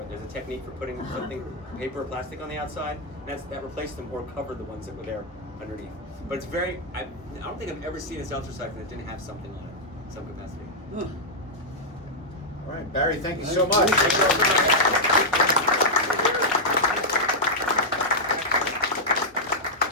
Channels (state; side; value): normal; both; correlation -0.05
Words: it. There's a technique for putting something, paper or plastic on the outside, and that replaced them or covered the ones that were there underneath. But it's very, I don't think I've ever seen a seltzer siphon that didn't have something on it, some capacity. All right, Barry, thank you so much.